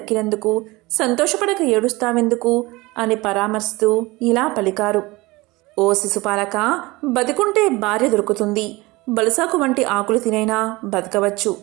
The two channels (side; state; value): left; quieter; 21.8 dB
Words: సంతోషపడక ఏడుస్తావెందుకు అని పరామర్శిస్తూ ఇలా పలికారు: ఓ శిశుపాలక, బతికుంటే భార్య దొరుకుతుంది, బలసాకు వంటి ఆకులు తినైనా బతకవచ్చు,